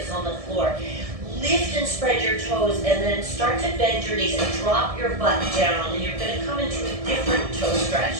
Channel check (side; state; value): left; late; 1.7 ms